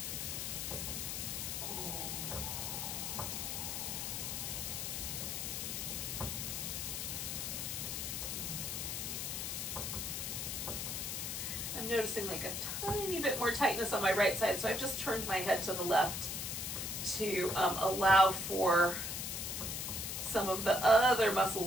I'm noticing like a tiny bit more tightness on my right side, so I've just turned my head to the left to allow for some of the other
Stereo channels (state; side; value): noise; left; hiss, 3 dB below the sound